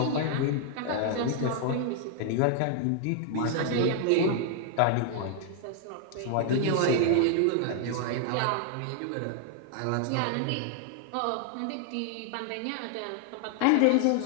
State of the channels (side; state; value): both; different; correlation 0.00